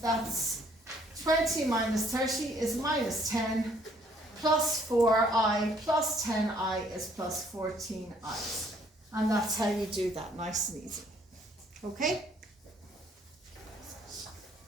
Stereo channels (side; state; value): both; normal; correlation 0.64